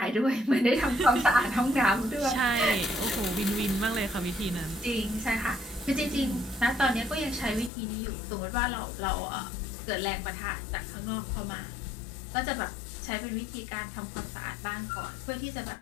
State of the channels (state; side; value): drops out; right; at 7.7 s